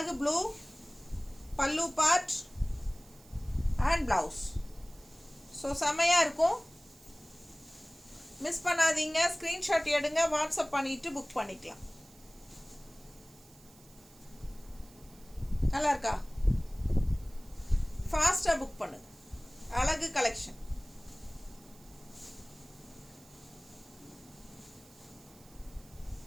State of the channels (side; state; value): right; noise; hiss, 25 dB below the sound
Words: ப்ளூ, பல்லு பார்ட் அண்ட் ப்ளவுஸ். ஸோ செமையாக இருக்கும். மிஸ் பண்ணாதீங்க. ஸ்க்ரீன்ஷாட் எடுங்க, வாட்ஸ்அப் பண்ணிவிட்டு புக் பண்ணிக்கலாம். நல்லா இருக்கா? ஃபாஸ்ட்டாக புக் பண்ணுங்க. அழகு கலெக்ஷன்.